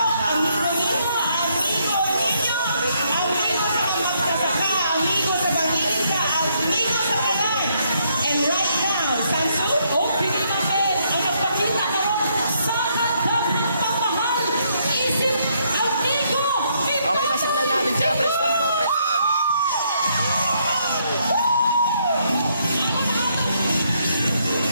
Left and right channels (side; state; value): both; inverted; correlation -0.73